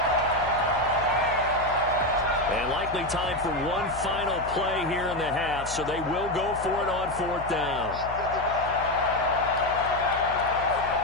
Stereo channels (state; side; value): noise; left; hum, 13 dB below the sound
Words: And likely time for one final play here in the half, so they will go for it on 4th down.